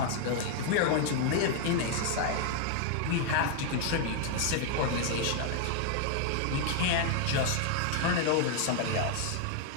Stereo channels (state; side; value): different; both; correlation 0.00